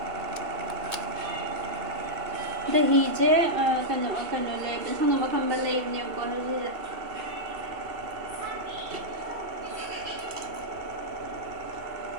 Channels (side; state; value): left; late; 2.7 ms